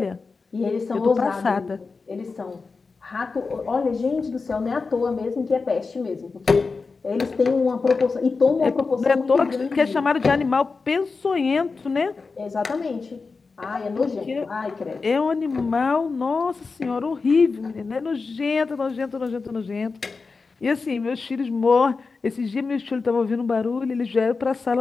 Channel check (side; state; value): right; quieter; 4.4 dB